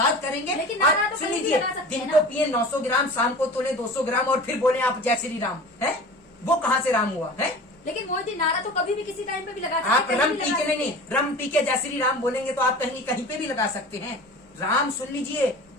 करेंगे। तो सुन लीजिए, दिन को पिए 900 ग्राम, शाम को तोड़े 200 ग्राम और फिर बोले आप जय श्री राम है। वो कहाँ से राम हुआ है? लेकिन मोदी जी, नारा तो कभी भी किसी टाइम पे भी लगा सकते हैं। आप रम पी के नहीं, रम पी के जय श्री राम बोलेंगे तो आप कहीं पे भी लगा सकते हैं। राम, सुन लीजिए,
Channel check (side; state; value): both; normal; correlation 0.37